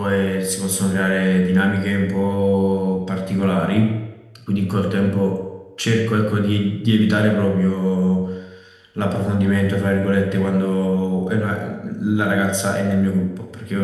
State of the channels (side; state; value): both; identical; correlation 1.00